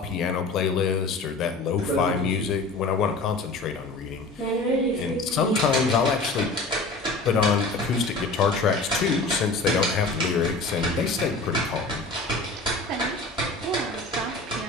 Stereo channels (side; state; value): right; quieter; 3.3 dB